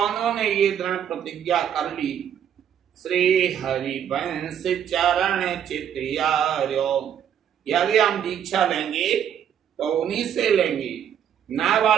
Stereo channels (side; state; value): left; quieter; 9.1 dB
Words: ने ये दृढ़ प्रतिज्ञा कर ली, श्री हरिवंश चरण चित्यार्यो। यदि हम दीक्षा लेंगे तो उन्हीं से लेंगे।